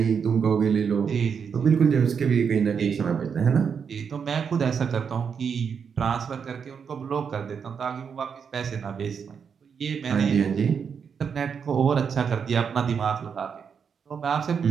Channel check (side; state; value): left; quieter; 6.6 dB